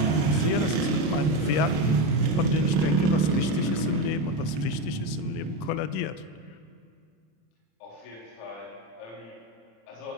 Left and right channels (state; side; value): late; right; 26 ms